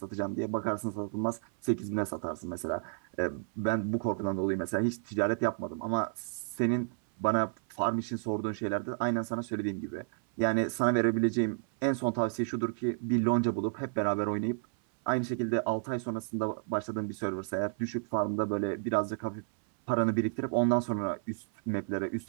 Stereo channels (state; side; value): silent; left; 57 dB below the other